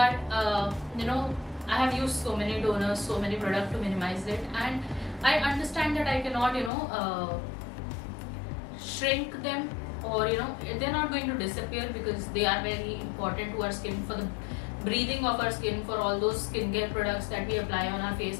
I have used so many toners, so many products to minimize it, and I understand that I cannot shrink them, or they're not going to disappear because they are very important to our skin, for the breathing of our skin, for all those skincare products that we apply on our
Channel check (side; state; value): right; drops out; at 6.7 s